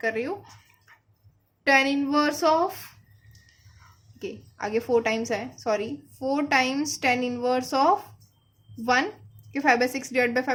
कर रही हूँ, tan इनवर्स ऑफ, ओके आगे 4 टाइम्स है, sorry 4 times tan inverse of 1 कि 5/6 डिवाइड बाई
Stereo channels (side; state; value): both; identical; correlation 1.00